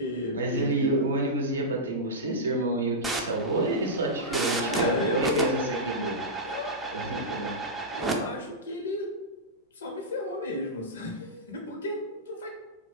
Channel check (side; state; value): both; normal; correlation -0.12